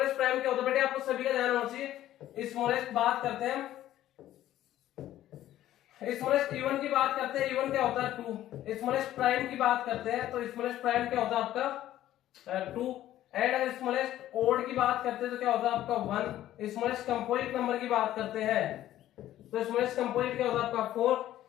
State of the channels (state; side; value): quieter; right; 13.3 dB